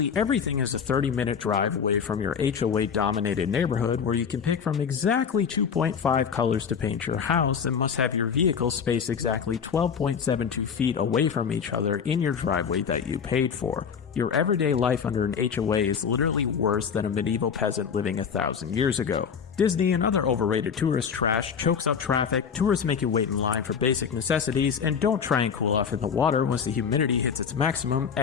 everything is a 30-minute drive away from your HOA-dominated neighborhood where you can pick from exactly 2.5 colors to paint your house and must have your vehicle spaced exactly 12.72 feet away from each other in your driveway that you paid for. Your everyday life under an HOA is literally worse than a medieval peasant living 1,000 years ago. Disney and other overrated tourist trash chokes up traffic, tourists make you wait in line for basic necessities, and don't try and cool off in the water once the humidity hits its maximum,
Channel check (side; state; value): right; quieter; 6.8 dB